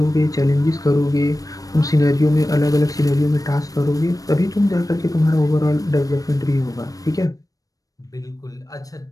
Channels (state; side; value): late; right; 0.17 ms